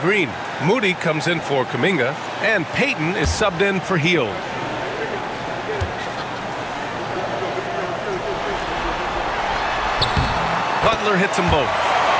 Moody comes in for Kuminga. And Payton is subbed in for Hield. Butler hits them both.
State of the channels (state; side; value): identical; both; correlation 1.00